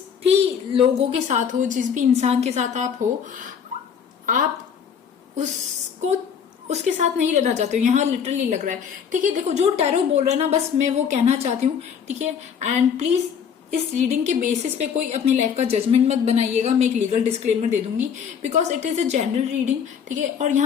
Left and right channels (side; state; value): right; quieter; 7.4 dB